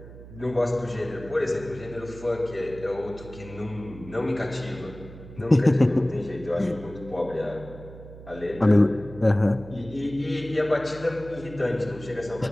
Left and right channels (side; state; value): right; noise; hum, 16 dB below the sound